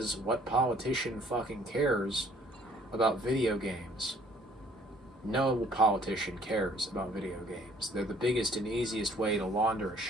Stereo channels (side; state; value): both; normal; correlation 0.59